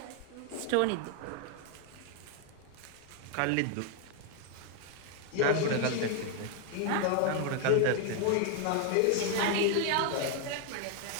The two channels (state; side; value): different; both; correlation 0.00